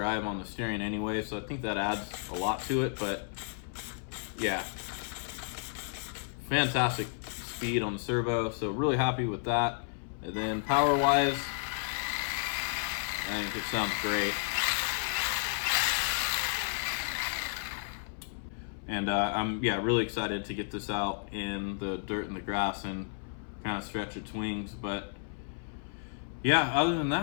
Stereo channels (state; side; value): silent; right; 56 dB below the other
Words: on the steering anyway, so I think that adds a lot to it, but yeah, fantastic speed on the servo, so really happy with that. And then power wise, I think it sounds great. And I'm really excited to get this out in the dirt and the grass and kind of stretch its wings. But yeah, other than